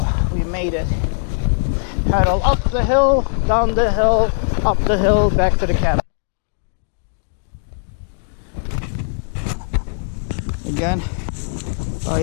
we made it. Pedal up the hill, down the hill, up the hill, back to the cabin. Again, I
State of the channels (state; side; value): silent; right; digital silence